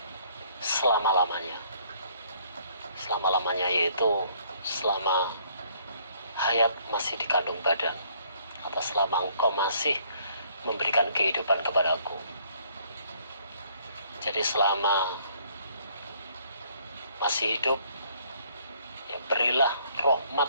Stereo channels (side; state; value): both; inverted; correlation -0.63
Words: selama-lamanya. Selama-lamanya yaitu selama hayat masih dikandung badan, atau selama engkau masih memberikan kehidupan kepadaku. Jadi selama masih hidup, ya berilah rahmat